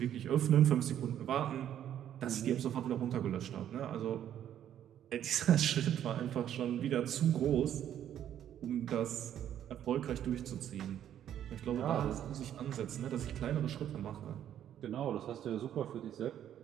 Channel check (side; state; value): left; quieter; 10.5 dB